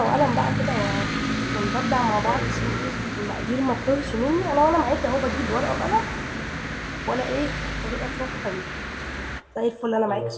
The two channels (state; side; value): identical; both; correlation 1.00